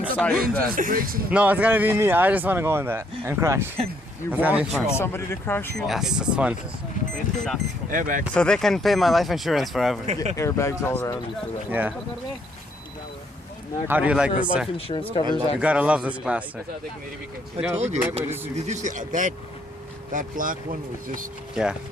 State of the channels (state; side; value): normal; both; correlation 0.69